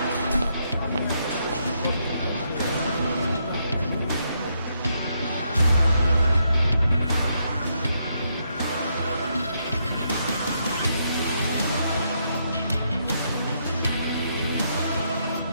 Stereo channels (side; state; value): both; inverted; correlation -0.77